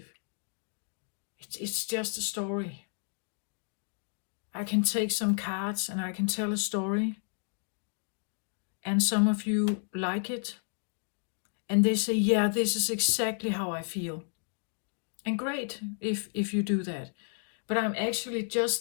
It's just a story. I can take some cards and I can tell a story. And some of you like it. And they say, yeah, this is exactly how I feel. And great if you do that. But I'm actually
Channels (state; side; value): silent; right; 57 dB below the other